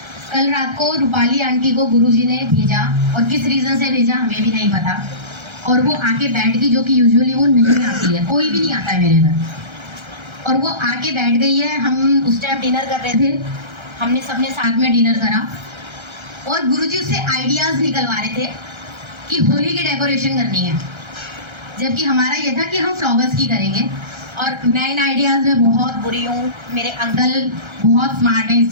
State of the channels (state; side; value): late; left; 1.3 ms